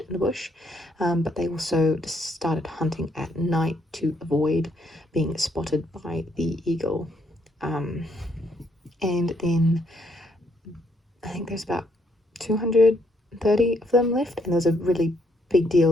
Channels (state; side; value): normal; both; correlation 0.72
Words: in the bush, but they also started hunting at night to avoid being spotted by the eagle. And then I think there's about 230 of them left, and there's a really big